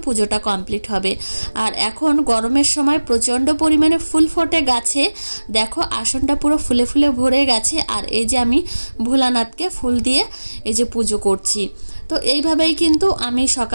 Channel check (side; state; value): both; inverted; correlation -1.00